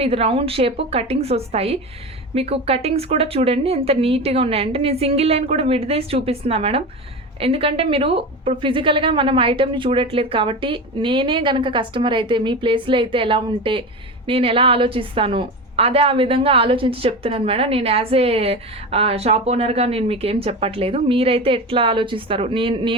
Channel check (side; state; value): both; normal; correlation 0.25